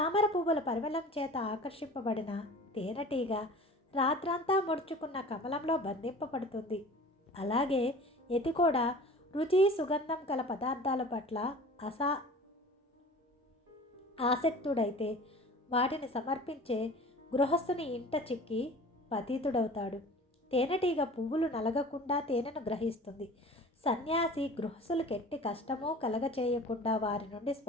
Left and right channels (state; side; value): normal; both; correlation 0.42